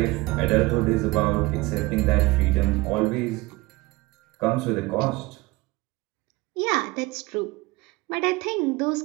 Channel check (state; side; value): quieter; left; 22.2 dB